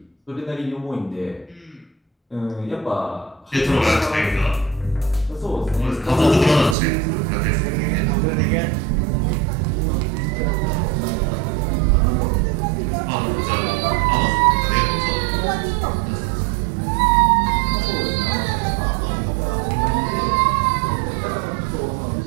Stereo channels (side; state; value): left; drops out; at 6.8 s